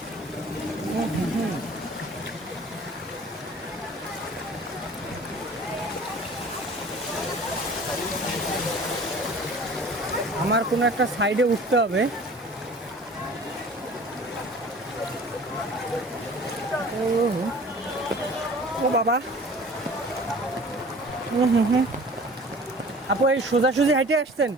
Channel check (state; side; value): normal; both; correlation 0.45